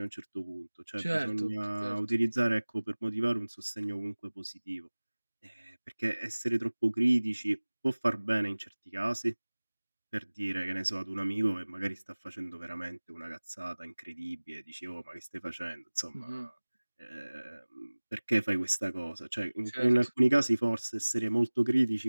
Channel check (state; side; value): inverted; both; correlation -1.00